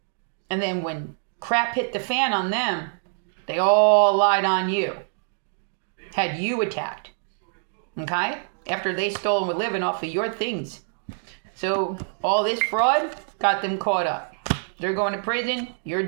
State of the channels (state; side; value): silent; left; digital silence